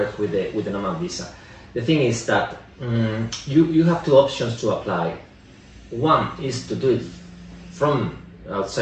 with the Nomad visa. The thing is that you have two options to apply. One is to do it from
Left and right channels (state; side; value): identical; both; correlation 1.00